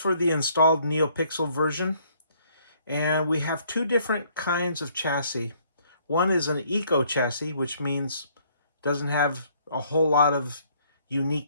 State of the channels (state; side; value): inverted; both; correlation -0.64